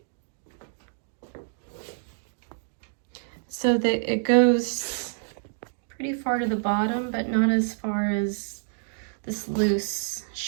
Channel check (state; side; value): silent; left; digital silence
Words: So that it goes pretty far to the bottom, but not as far as this loose